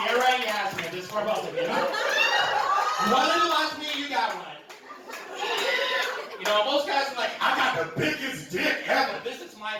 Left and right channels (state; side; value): identical; both; correlation 1.00